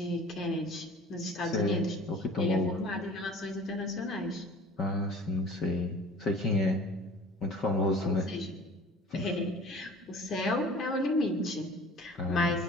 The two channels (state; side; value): normal; both; correlation 0.45